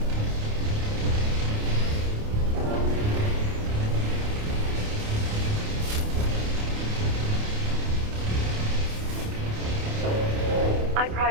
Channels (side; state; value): left; late; 28 ms